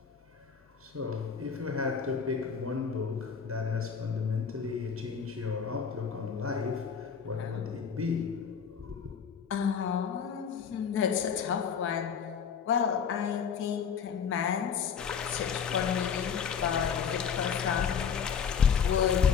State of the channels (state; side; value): quieter; right; 6.8 dB